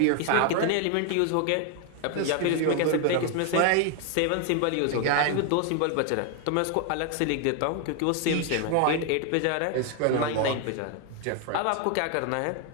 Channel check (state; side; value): different; both; correlation 0.01